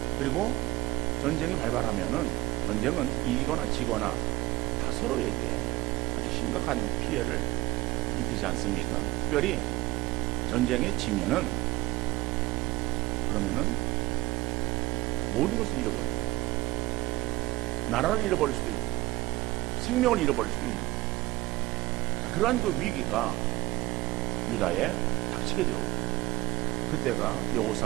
그리고 전쟁이 발발하면은 전쟁은 이기거나 지거나 다 서로에게 아주 심각한 피해를 입히지 않습니까? 특별히 전쟁에 지면은 그러면은 모든 것을 잃어버려요. 나라를 잃어버릴 수도 있고 생명을 잃어버릴 수도 있는 거예요. 자, 그러한 그 위기가 유다에 닥치게 되었고 그때가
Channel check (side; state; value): left; quieter; 19.6 dB